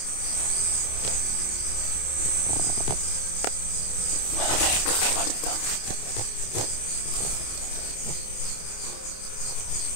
Maraming kakaiba dito.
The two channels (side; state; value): right; late; 28 ms